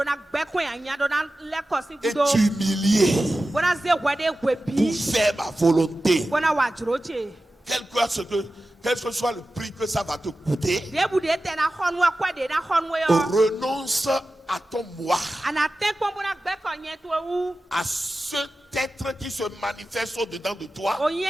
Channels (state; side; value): normal; both; correlation 0.94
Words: t'humilier pour faire ma volonté. Quel que soit le prix que ça va te coûter, renonce à ton moi, à cet être qui se manifeste au-dedans de toi